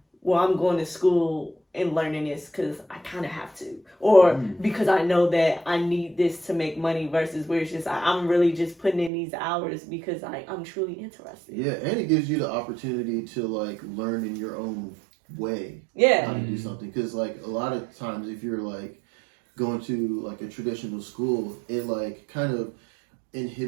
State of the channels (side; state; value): left; drops out; at 9.1 s